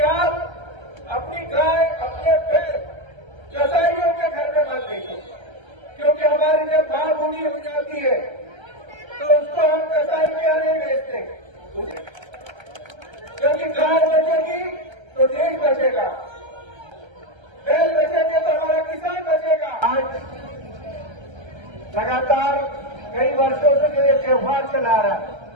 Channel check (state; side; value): late; left; 1.3 ms